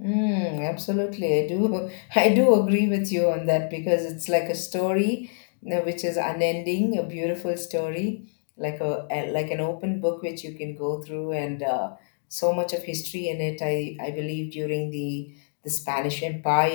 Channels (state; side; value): silent; right; digital silence